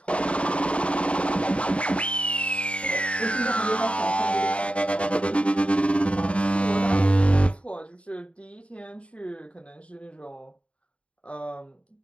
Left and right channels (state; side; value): late; right; 0.061 ms